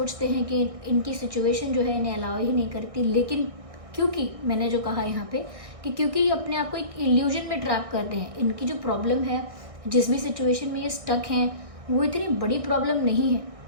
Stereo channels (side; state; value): left; late; 1.6 ms